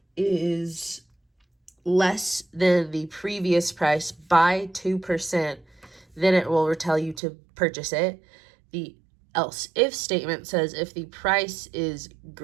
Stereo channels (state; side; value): drops out; left; at 7.2 s